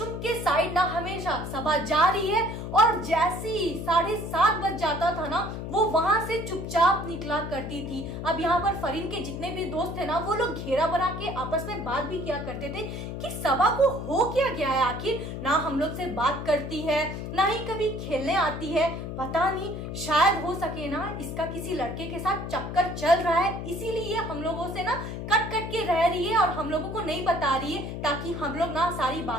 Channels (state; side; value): noise; left; hum, 6 dB below the sound